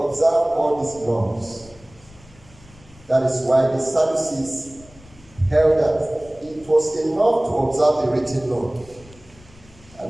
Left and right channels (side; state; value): left; noise; rumble, 24 dB below the sound